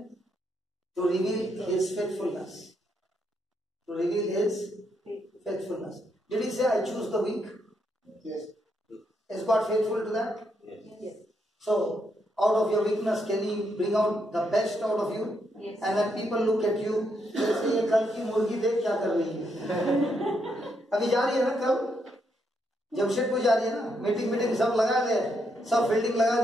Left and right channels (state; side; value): normal; both; correlation 0.78